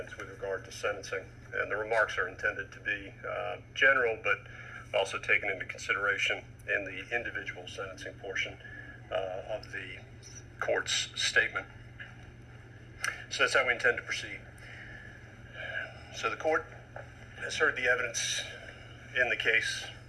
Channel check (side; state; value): both; identical; correlation 1.00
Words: with regard to sentencing. And the remarks are intended to be general, but also taken into consideration in the individual sentencing portion of the court's statement. So that's how we intend to proceed. So the court has heard the evidence in the case,